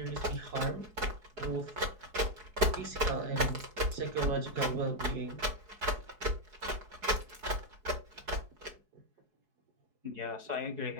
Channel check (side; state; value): left; late; 4.8 ms